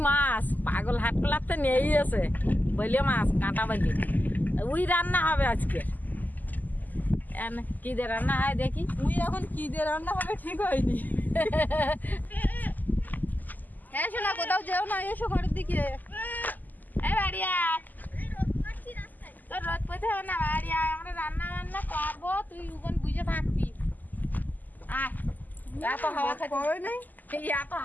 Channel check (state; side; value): late; right; 0.084 ms